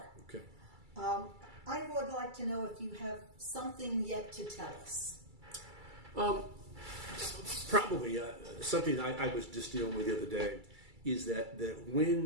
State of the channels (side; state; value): left; late; 2.3 ms